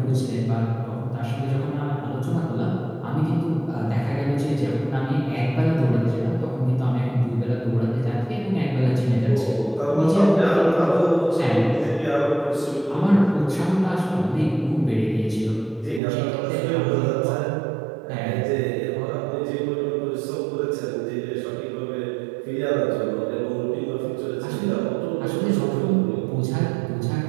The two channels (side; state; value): left; drops out; at 16.0 s